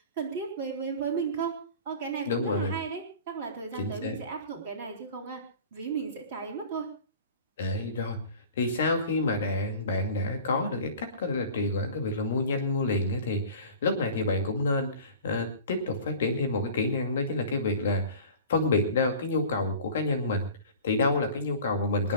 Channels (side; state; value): both; inverted; correlation -0.41